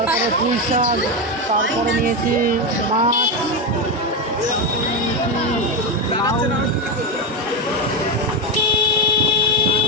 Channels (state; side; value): normal; both; correlation 0.11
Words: পুঁই শাক, তারপরে নিয়েছি মাছ, লাউ,